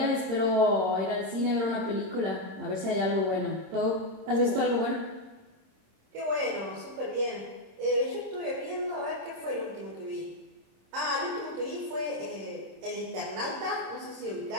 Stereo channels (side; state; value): left; late; 26 ms